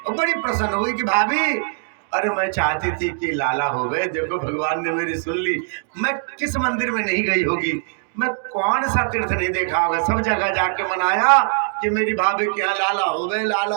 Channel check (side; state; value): left; silent; 56 dB below the other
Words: बड़ी प्रसन्न हुई कि भाभी अरे मैं चाहती थी कि लाला हो गए, देखो भगवान ने मेरी सुन ली। मैं किस मंदिर में नहीं गई होगी, मैं कौन सा तीर्थ नहीं देखा होगा, सब जगह जाके मनाया कि मेरी भाभी के यहाँ लाला हो गए, लाला